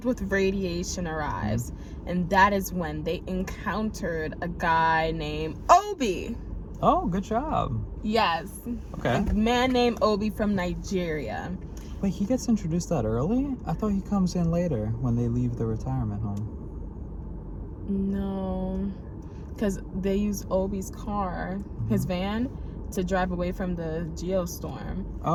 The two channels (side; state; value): both; identical; correlation 1.00